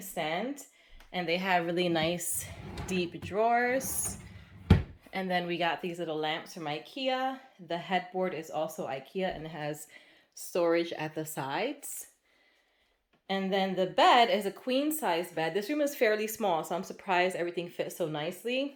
and they have really nice deep drawers. And then we got these little lamps from Ikea. The headboard is also Ikea and it has storage at the sides. And then the bed is a queen size bed. This room is fairly small, so I'm surprised everything fits so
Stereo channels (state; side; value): identical; both; correlation 1.00